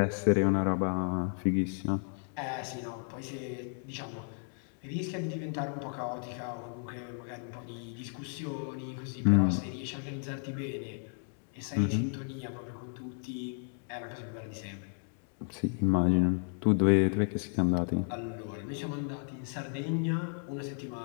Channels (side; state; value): right; silent; 56 dB below the other